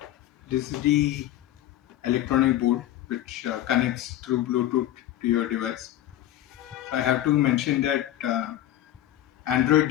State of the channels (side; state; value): right; quieter; 13.2 dB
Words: This is the electronic board which connects through Bluetooth to your device. So I have to mention that Android